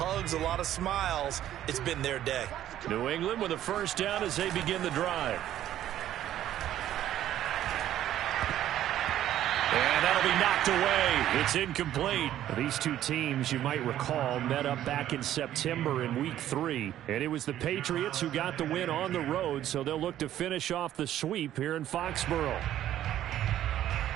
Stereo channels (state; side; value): quieter; left; 12.1 dB